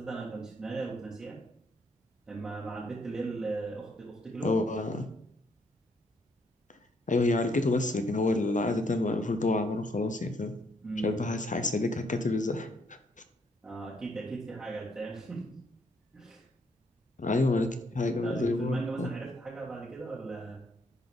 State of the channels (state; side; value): normal; both; correlation 0.71